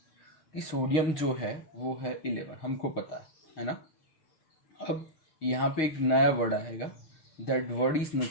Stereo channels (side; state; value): right; late; 6.3 ms